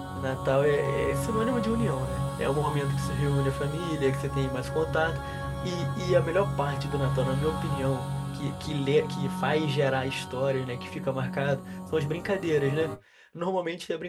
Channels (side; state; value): both; identical; correlation 1.00